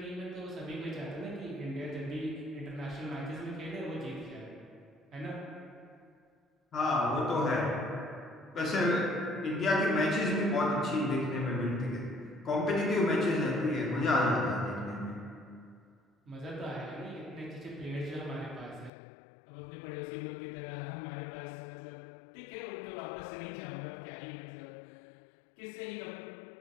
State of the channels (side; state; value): right; drops out; at 18.9 s